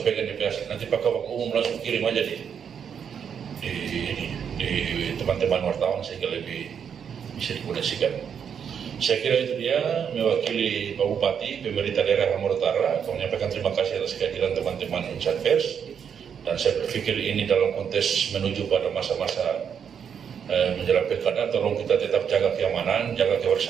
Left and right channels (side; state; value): left; quieter; 7.6 dB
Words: di pers, nanti Pak Kabak Umum langsung kirim aja di teman-teman wartawan sehingga lebih bisa dikoneksikan. Saya kira itu dia mewakili Pak Bupati, pemerintah daerah Halmahera Utara, menyampaikan terima kasih atas kehadiran teman-teman insan pers. Dan saya berpikir ini dalam konteks menuju pada masa-masa menjelang pilkada, tolong kita tetap jaga keamanan, jaga